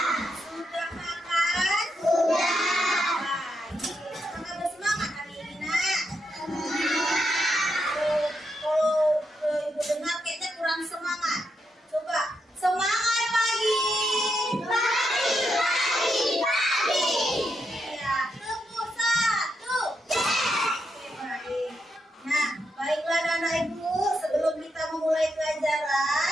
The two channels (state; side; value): normal; both; correlation 0.82